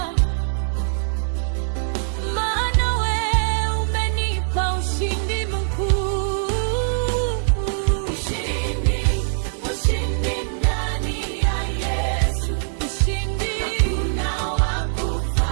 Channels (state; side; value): silent; left; 60 dB below the other